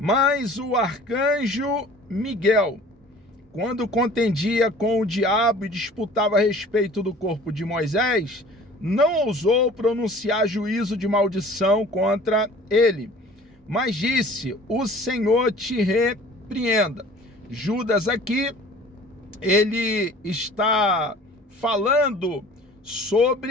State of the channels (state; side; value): normal; both; correlation 0.47